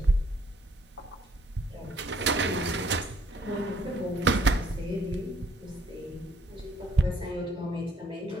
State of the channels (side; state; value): both; normal; correlation 0.65